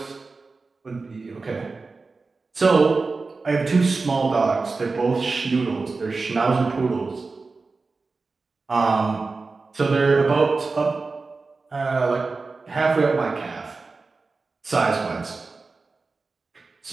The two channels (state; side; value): quieter; left; 4.0 dB